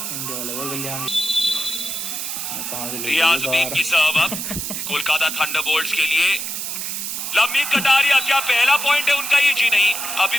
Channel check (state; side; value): noise; right; hiss, 4 dB below the sound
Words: इंडिया वाले बोल गया कहां से रियाजुद्दीन की सर्व अब कोलकाता थंडरबोल्ट्स के लिए। लंबीन कटारिया, क्या पहला पॉइंट है उनका ये? जी नहीं, अभी